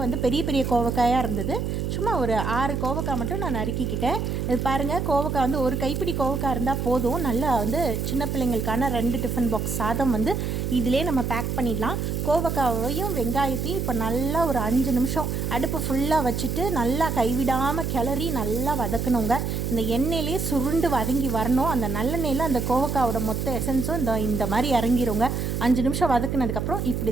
வந்து பெரிய பெரிய கோவக்காயாக இருந்தது. சும்மா ஒரு 6 கோவக்காய் மட்டும் நான் நறுக்கிக்கிட்டேன். இது பாருங்கள், கோவக்காய் வந்து ஒரு கைப்பிடி கோவக்காய் இருந்தால் போதும். நல்லா வந்து சின்ன பிள்ளைங்களுக்கான 2 டிஃபன் பாக்ஸ் சாதம் வந்து இதிலே நம்ம பேக் பண்ணிடலாம். கோவக்காவையும் வெங்காயத்தையும் இப்போ நல்லா ஒரு 5 நிமிஷம் அடுப்பு ஃபுல்லாக வச்சுட்டு நல்லா கைவிடாமல் கிளறி நல்லா வதக்கணுங்க. இந்த எண்ணெயிலே சுருண்டு வதங்கி வரணும். அந்த நல்லெண்ணெயில் அந்த கோவக்காவோட மொத்த எசன்ஸும் இந்த மாதிரி இறங்கிருங்க. 5 நிமிஷம் வதக்குனதுக்கப்புறம்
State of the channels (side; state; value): right; noise; hum, 1 dB below the sound